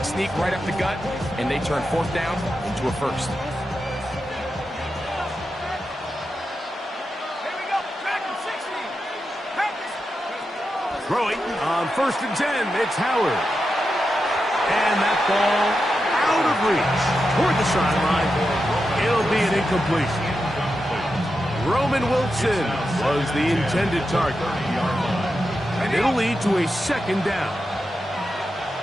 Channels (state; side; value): normal; both; correlation 0.88